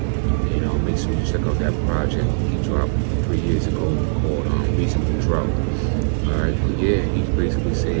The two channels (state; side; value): silent; left; digital silence